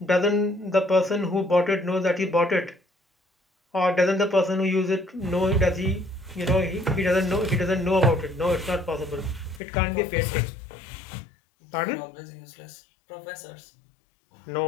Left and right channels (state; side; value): drops out; right; at 9.6 s